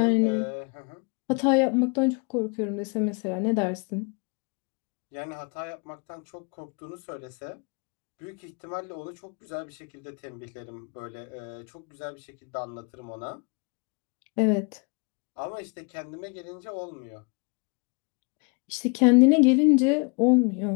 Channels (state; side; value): quieter; right; 33.4 dB